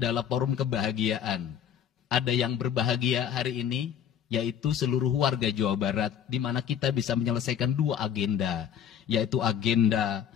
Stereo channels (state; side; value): quieter; right; 9.0 dB